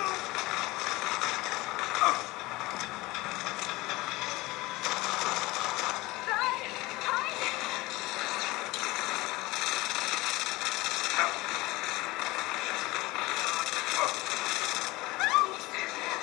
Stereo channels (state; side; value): quieter; right; 21.0 dB